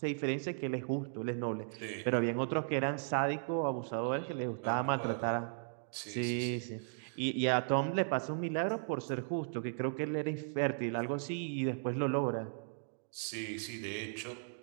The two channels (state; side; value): silent; left; digital silence